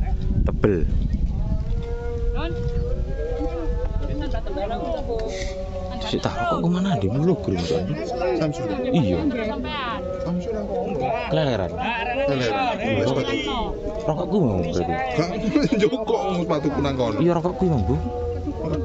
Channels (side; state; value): both; identical; correlation 1.00